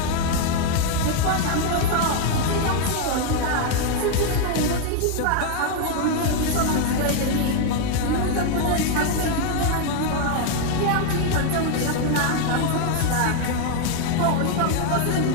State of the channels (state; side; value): different; both; correlation 0.00